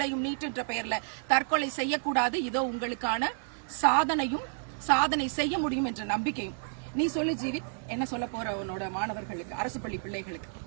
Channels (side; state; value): left; silent; digital silence